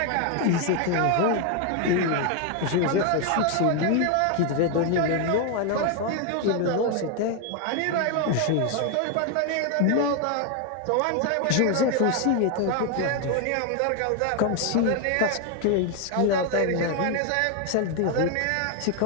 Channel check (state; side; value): different; both; correlation 0.01